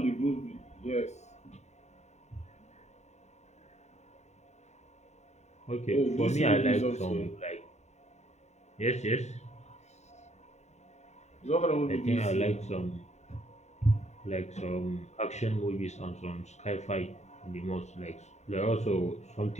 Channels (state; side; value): late; right; 0.33 ms